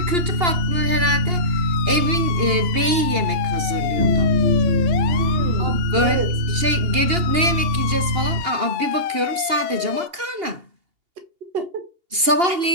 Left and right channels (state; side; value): late; left; 2.8 ms